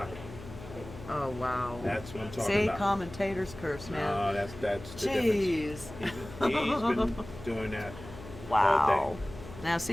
Oh, wow. That's what I'm talking See, about. commentator's curse, man. No, that's the Jeez. difference. He's been doing that all Wow. day. Now, see,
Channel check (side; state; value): left; noise; hum, 14 dB below the sound